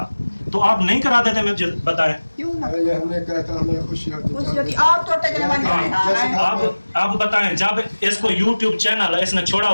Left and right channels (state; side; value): inverted; both; correlation -1.00